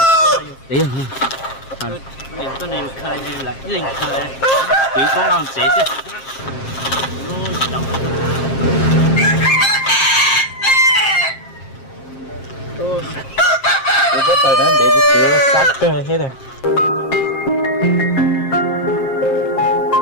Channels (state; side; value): late; right; 7.5 ms